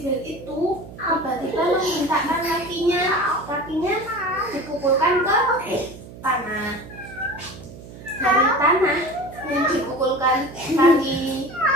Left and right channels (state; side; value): noise; right; hum, 16 dB below the sound